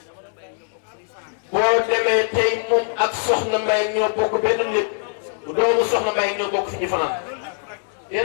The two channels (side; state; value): right; silent; digital silence